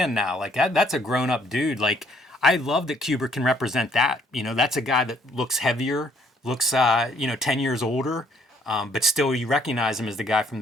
now. Like, that's a grown-up dude. Like, I love that Kubert can represent that. That's a guy that looks heavier, looks, 10 years older, but still you recognize him as the guy from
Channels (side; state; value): both; normal; correlation 0.65